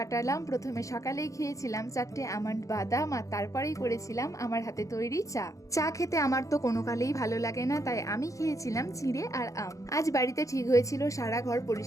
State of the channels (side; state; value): right; late; 0.16 ms